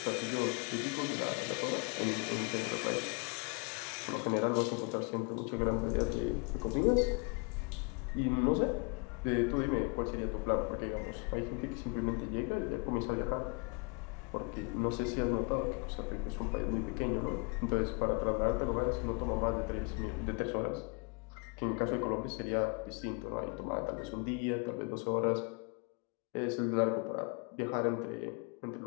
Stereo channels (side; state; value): right; quieter; 33.1 dB